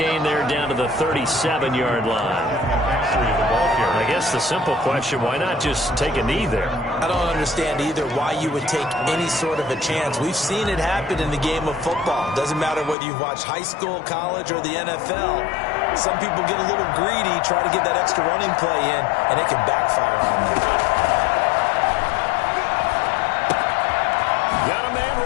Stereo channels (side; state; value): right; drops out; at 13.0 s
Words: there down to the 37-yard line. I guess the simple question, why not just take a knee there? I don't understand either why you would take any sort of a chance. We've seen it happen in the game of football. Doesn't matter whether you've watched high school, college, or the NFL. Some people get a little greedy, try to get that extra running play in, and it can backfire on them. Got a man